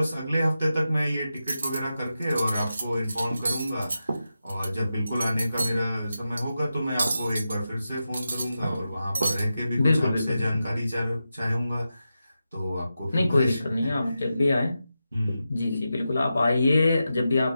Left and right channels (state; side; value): inverted; both; correlation -0.90